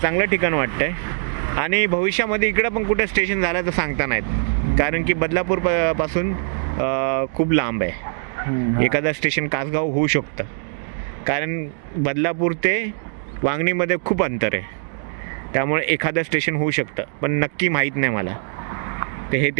ठिकाण वाटतंय. आणि भविष्यामध्ये इकडं पण कुठे स्टेशन झालं तर सांगता नाहीत, कारण की बदलापूर पासून खूप लांब आहे. एखादं स्टेशन कासगाव होऊ शकतं, कारण बदलापूर ते वांगणीमध्ये खूप अंतर आहे. त्यामुळे एखादं स्टेशन होऊ शकतं, पण नक्की माहीत नाही मला. ते हे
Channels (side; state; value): left; silent; digital silence